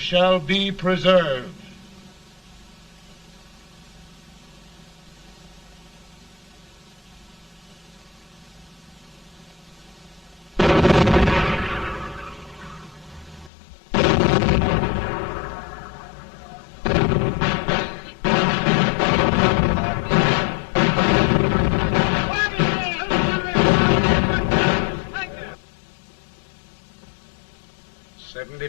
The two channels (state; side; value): drops out; right; at 13.5 s